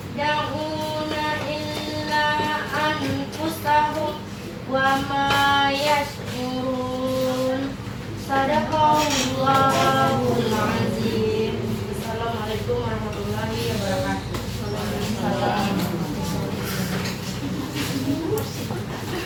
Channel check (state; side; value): identical; both; correlation 1.00